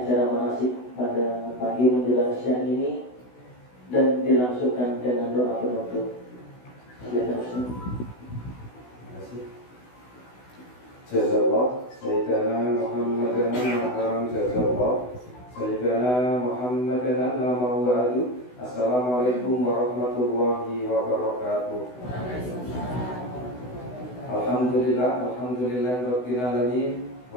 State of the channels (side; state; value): right; late; 16 ms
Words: manasik pada pagi menjelang siang ini dan dilangsungkan dengan doa penutup. Silakan Ustaz. Jazallah Sayyidina Muhammadan Al-Haram Jazallah Sayyidina Muhammadan Al-Mawadu. Assalamualaikum warahmatullahi wabarakatuh. Alhamdulillah Rabbil Alamin